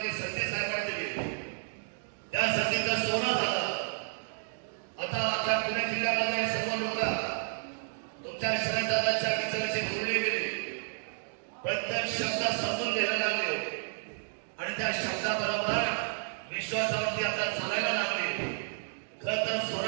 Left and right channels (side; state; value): left; silent; digital silence